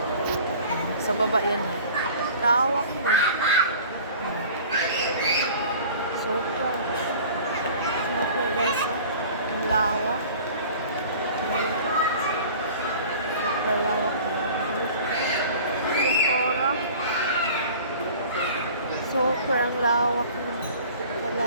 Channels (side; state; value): both; inverted; correlation -0.44